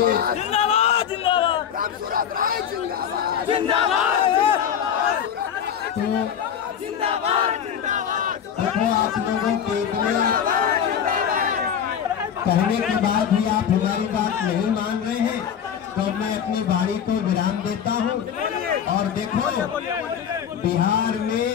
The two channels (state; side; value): quieter; right; 8.5 dB